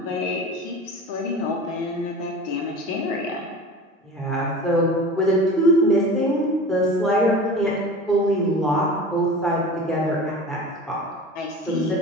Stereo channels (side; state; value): both; normal; correlation 0.36